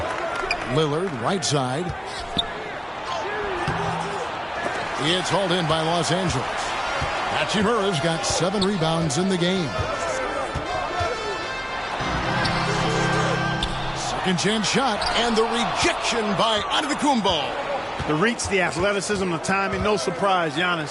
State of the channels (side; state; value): both; identical; correlation 1.00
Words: Lillard, right side. It's hauled in by Los Angeles. Hachimura's got 7 rebounds in the game. Second chance shot, and the rejection by Antetokounmpo. The reach, the athleticism, the timing, no surprise.